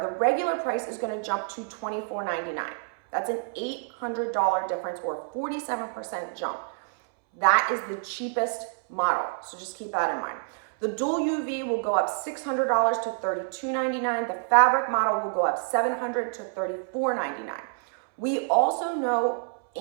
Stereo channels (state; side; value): silent; left; 60 dB below the other